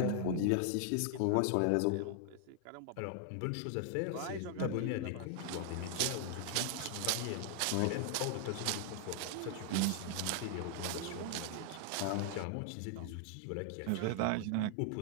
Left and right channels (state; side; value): different; both; correlation 0.00